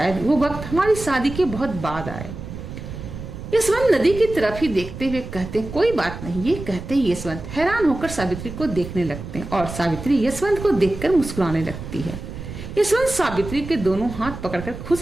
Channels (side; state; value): right; noise; rumble, 10 dB below the sound